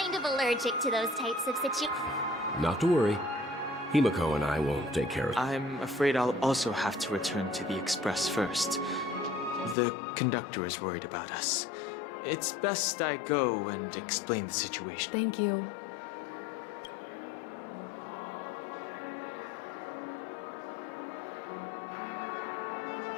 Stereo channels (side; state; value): right; drops out; at 9.8 s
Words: of allergic to those types of situations. Not to worry. Himiko and I won't take care of it. I'm afraid I'll also have to return to the Express first. The conductor is worried about us. It's best I go and explain the situation. Thank you.